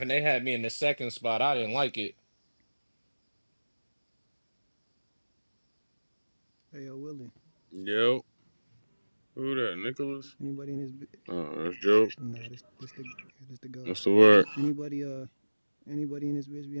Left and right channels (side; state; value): both; inverted; correlation -1.00